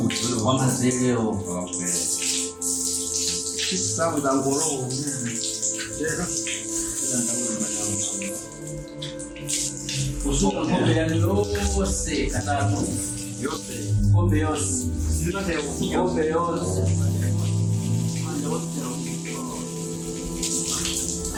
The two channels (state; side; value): identical; both; correlation 1.00